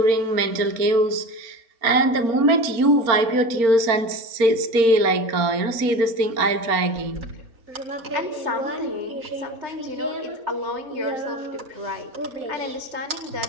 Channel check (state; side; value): late; left; 4.4 ms